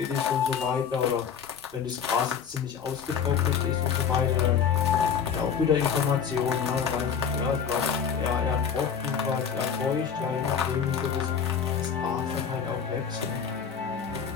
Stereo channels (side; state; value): right; quieter; 7.2 dB